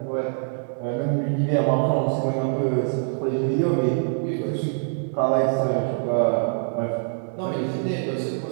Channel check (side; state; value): left; silent; 62 dB below the other